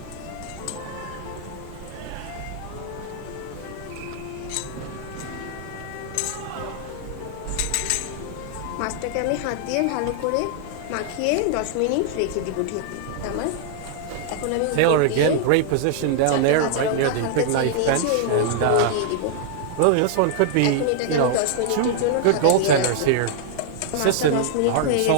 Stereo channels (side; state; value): both; different; correlation -0.01